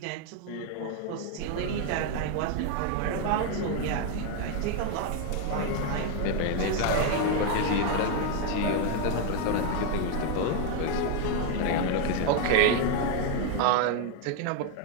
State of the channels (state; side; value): different; both; correlation 0.01